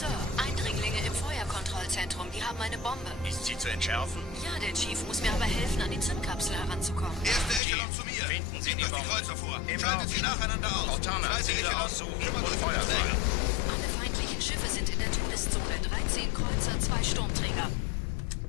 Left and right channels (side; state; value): right; drops out; at 7.6 s